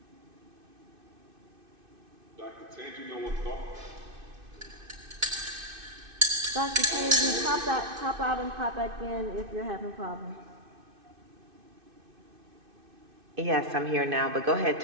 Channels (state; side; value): late; left; 2.6 ms